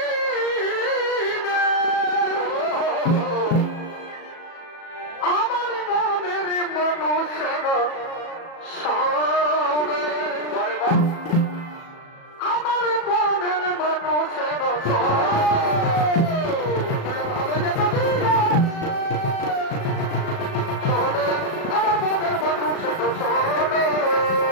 আমার মনের মানুষের সামনে, আরে বাহ, আমার মনের মানুষের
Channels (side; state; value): right; late; 37 ms